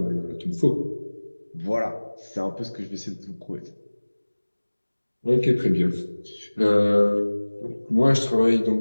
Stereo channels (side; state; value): both; inverted; correlation -1.00